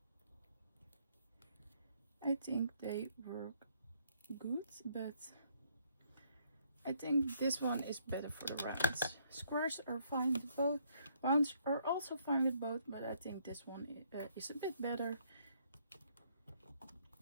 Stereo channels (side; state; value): both; inverted; correlation -0.69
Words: I think they work good, but I think this one is better for the rounds. Squares are fine with both. Rounds are also fine with both, but I think this one is a bit better.